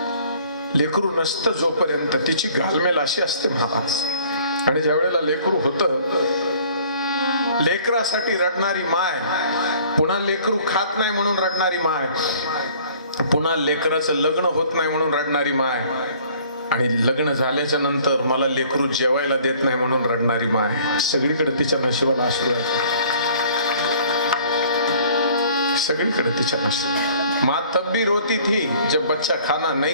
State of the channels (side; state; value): both; inverted; correlation -0.54